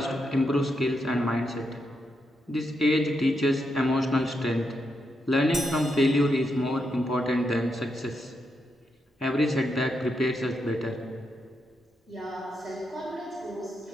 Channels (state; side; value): normal; both; correlation 0.83